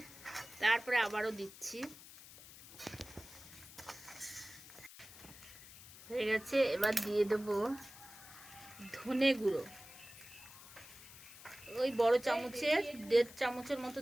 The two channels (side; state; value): left; noise; hiss, 17 dB below the sound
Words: তারপরে আবারও দিচ্ছি। হয়ে গেছে। এবার দিয়ে দেবো ধনে গুঁড়ো। ওই বড় চামচের 1.5 চামচের মতো